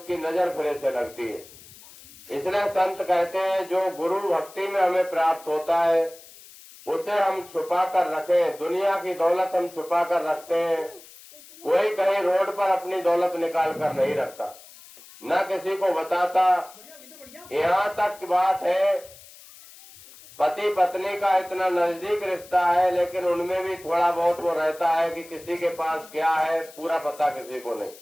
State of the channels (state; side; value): noise; left; hiss, 20 dB below the sound